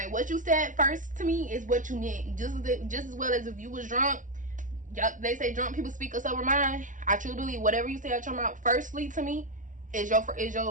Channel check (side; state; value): left; late; 0.37 ms